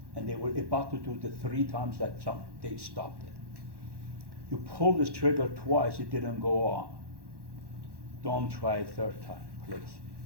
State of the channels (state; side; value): late; left; 1.1 ms